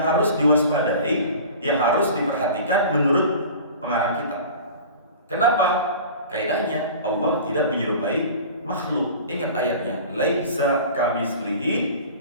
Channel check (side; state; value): both; inverted; correlation -0.39